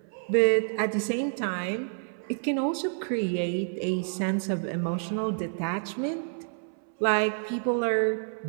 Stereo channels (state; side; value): silent; left; 59 dB below the other